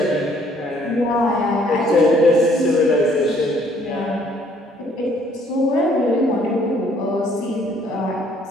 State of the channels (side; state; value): both; normal; correlation 0.63